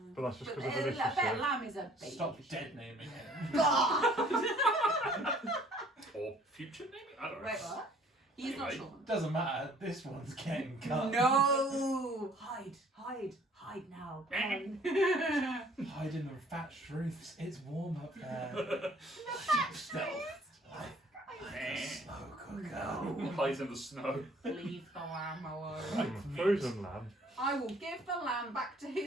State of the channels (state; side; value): normal; both; correlation 0.57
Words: but that's just But because of I bet relationship. lamb is a baby. Stop sheep. dead naming him. Or future naming? I don't know. Wait, what? He's not Anyway. Sean. Doesn't matter. This one's getting cut. No! Hide now. Hide in the thatched roofs. It's warm up there. Stealth. Slow cooker. Hides in the snow. Leave the lamb alone. Like frozen lamb. I will give the lamb back to